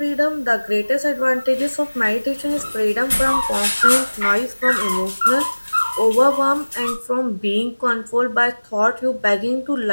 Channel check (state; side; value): inverted; both; correlation -1.00